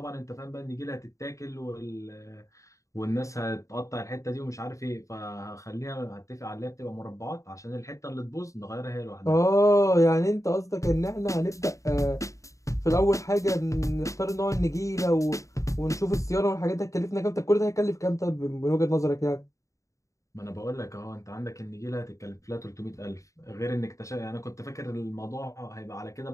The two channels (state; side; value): late; right; 0.15 ms